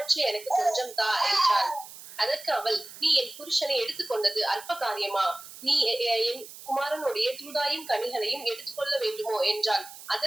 எனக்கு கொஞ்சம் தா என்றாள். அதற்கு அவள் நீ என் புருஷனை எடுத்துக்கொண்டது அற்ப காரியமா, நீ என் குமாரனுடைய தூதாயின் கனிகளையும் எடுத்துக்கொள்ள வேண்டுமோ என்றாள்.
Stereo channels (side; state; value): right; noise; hiss, 16 dB below the sound